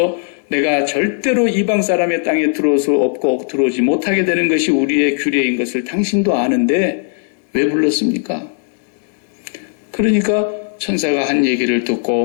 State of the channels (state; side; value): silent; right; digital silence